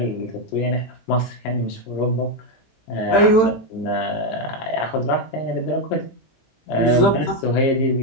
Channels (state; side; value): late; right; 18 ms